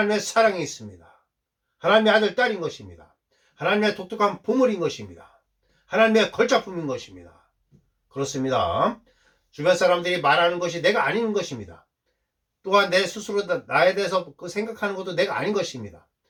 사랑이 있습니다. 하나님의 아들 딸인 것입니다. 하나님의 독특한 보물인 것입니다. 하나님의 걸작품인 것입니다. 그렇습니다. 주변 사람들이 말하는 것이 내가 아닌 것입니다. 또한 내 스스로 나에 대해서 그 생각하는 것도 내가 아닌 것입니다.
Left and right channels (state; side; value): identical; both; correlation 1.00